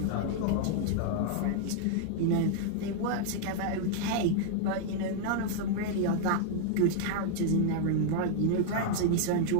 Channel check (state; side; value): different; both; correlation -0.01